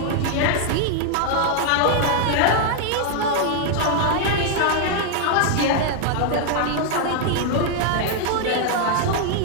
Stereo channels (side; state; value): both; different; correlation 0.00